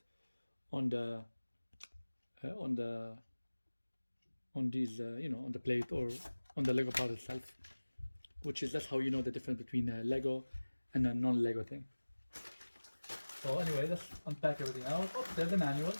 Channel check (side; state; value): both; inverted; correlation -1.00